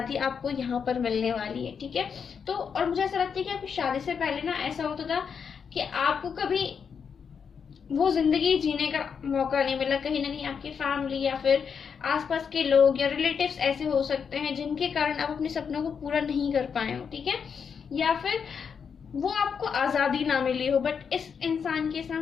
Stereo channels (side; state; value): right; quieter; 6.6 dB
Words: आपको यहाँ पर मिलने वाली है, ठीक है। तो और मुझे ऐसा लगता है कि आपकी शादी से पहले ना ऐसा होता था कि आपको कभी वो जिंदगी जीने का मौका नहीं मिला। कहीं ना कहीं आपकी फैमिली या फिर आसपास के लोग या रिलेटिव्स ऐसे हो सकते हैं जिनके कारण आप अपने सपनों को पूरा नहीं कर पाए हो, ठीक है, या फिर वो आपको आजादी ना मिली हो। बट इस इंसान के